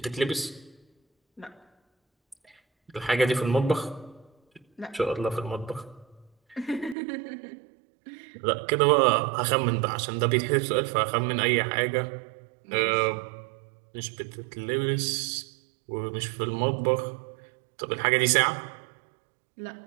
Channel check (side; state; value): left; drops out; at 7.0 s